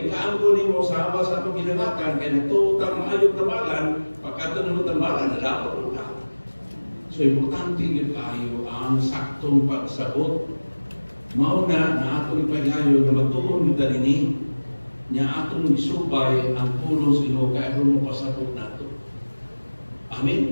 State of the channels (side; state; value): both; inverted; correlation -1.00